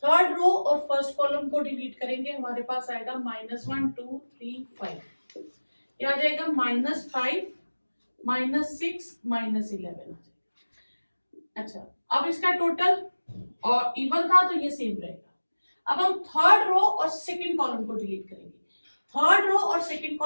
थर्ड रो और फर्स्ट कॉलम को डिलीट करेंगे, हमारे पास आएगा -1 2 3 5। ये आ जाएगा -5 -6 -11। अच्छा, अब इसका टोटल और इवन था तो ये सेम रहेगा। अब हम थर्ड रो और सेकंड कॉलम को डिलीट करेंगे, थर्ड रो और सेकंड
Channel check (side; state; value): both; inverted; correlation -1.00